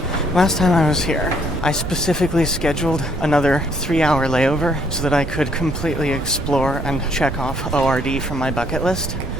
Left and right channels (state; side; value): noise; right; rumble, 6 dB below the sound